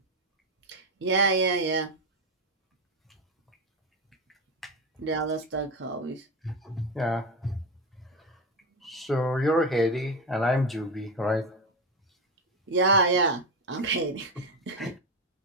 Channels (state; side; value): normal; both; correlation 0.15